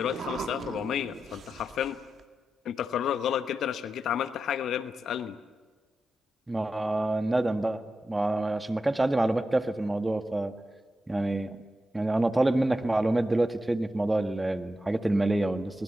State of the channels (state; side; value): normal; both; correlation 0.89